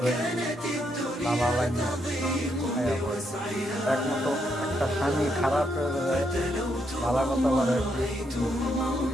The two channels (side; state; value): both; normal; correlation 0.77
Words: বাবা লাগে একমাত্র একটা স্বামী খারাপ হয়ে যায়, ভালো কথা বলে